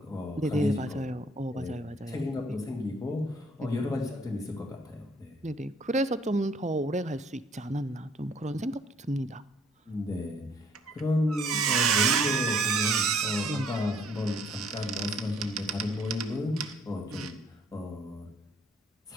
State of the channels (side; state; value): both; normal; correlation 0.61